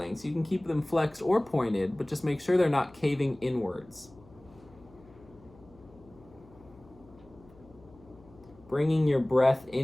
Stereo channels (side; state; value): left; noise; hum, 25 dB below the sound